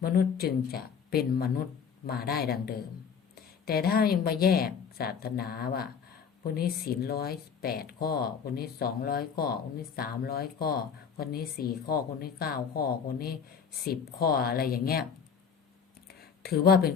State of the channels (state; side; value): quieter; right; 6.7 dB